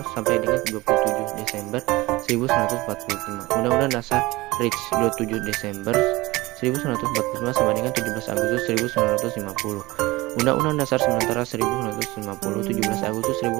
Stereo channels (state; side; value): quieter; left; 20.7 dB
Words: sampai dengan 27 Desember 1945. Undang-Undang Dasar RIC 27 Desember 1945 sampai dengan 17 Agustus 1950. Undang-Undang Dasar Sementara 1950, 17 Agustus